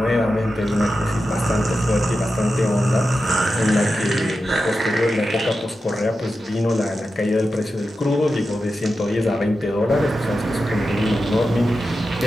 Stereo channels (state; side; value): normal; both; correlation 0.91